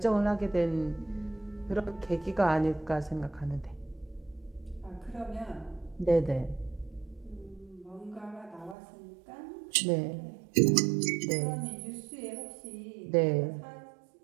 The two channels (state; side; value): drops out; left; at 8.8 s